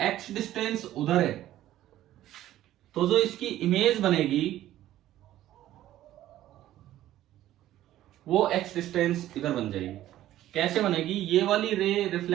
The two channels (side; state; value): left; quieter; 13.6 dB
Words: डिस्टेंस उधर है तो जो इसकी इमेज बनेगी वो एक्स डिस्टेंस इधर बन जाएगी। कैसे बनेगी? ये वाली रे